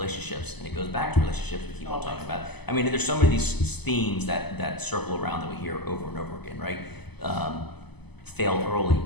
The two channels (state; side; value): late; right; 0.99 ms